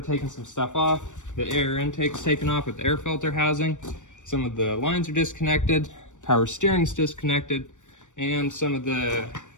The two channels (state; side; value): late; right; 0.85 ms